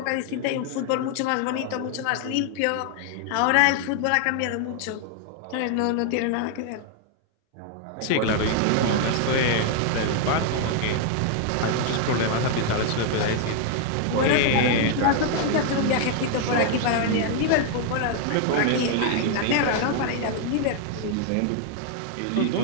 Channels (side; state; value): both; different; correlation 0.00